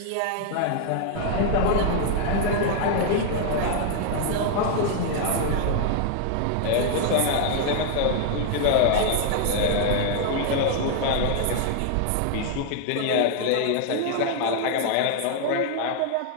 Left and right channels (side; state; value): both; different; correlation 0.00